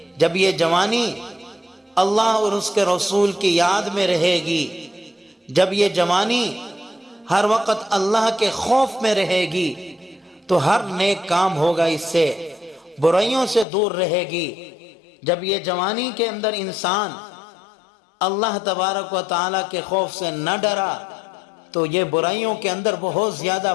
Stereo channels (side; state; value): right; drops out; at 13.7 s